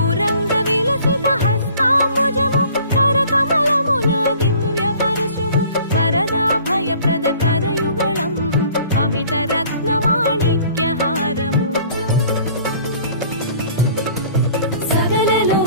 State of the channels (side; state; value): both; inverted; correlation -0.52